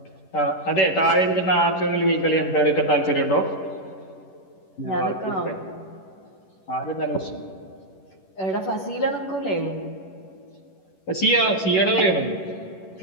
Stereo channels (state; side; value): late; right; 11 ms